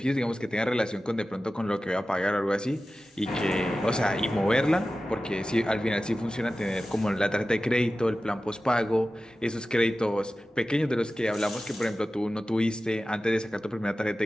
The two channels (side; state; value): both; normal; correlation 0.95